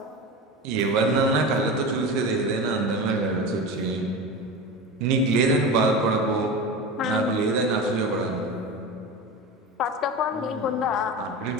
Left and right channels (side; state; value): both; normal; correlation 0.27